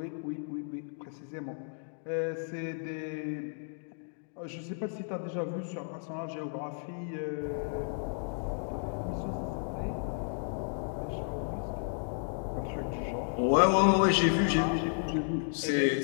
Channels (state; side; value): silent; right; digital silence